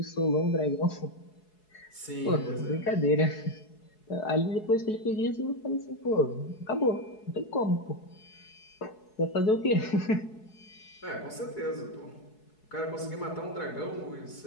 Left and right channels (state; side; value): late; right; 4.7 ms